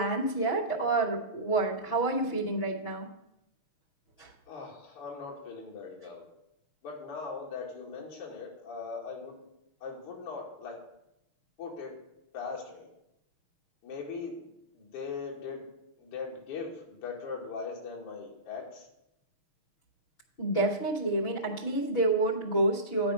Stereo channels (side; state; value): right; late; 6.3 ms